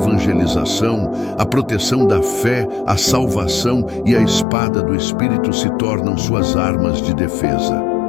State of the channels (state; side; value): drops out; right; at 4.5 s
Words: a proteção da fé, a salvação e a espada do Espírito se tornam suas armas de defesa.